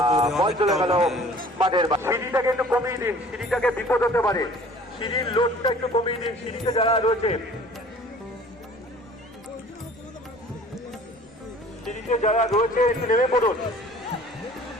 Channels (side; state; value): both; normal; correlation 0.49